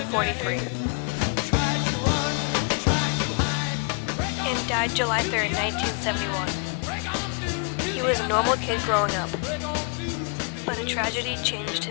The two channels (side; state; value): right; quieter; 36.8 dB